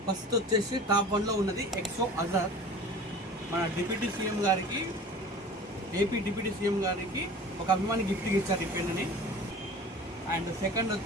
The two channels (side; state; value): both; normal; correlation 0.41